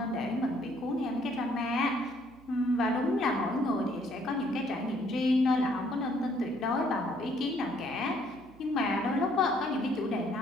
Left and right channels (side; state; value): right; noise; hum, 24 dB below the sound